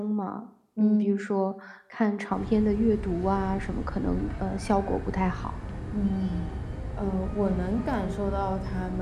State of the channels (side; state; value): both; identical; correlation 1.00